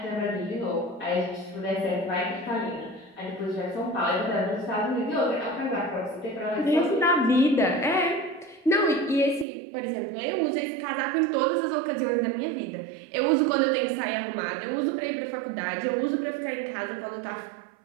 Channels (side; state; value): left; drops out; at 9.5 s